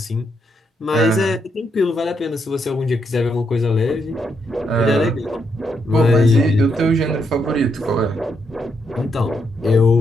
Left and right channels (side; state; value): both; normal; correlation 0.78